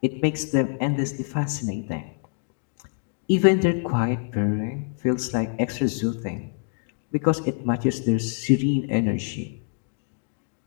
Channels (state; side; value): silent; right; 55 dB below the other